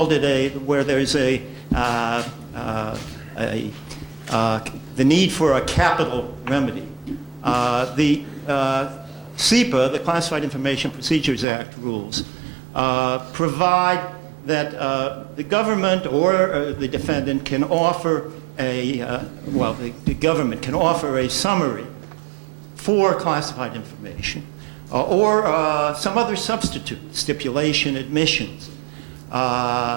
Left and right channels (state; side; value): drops out; left; at 11.5 s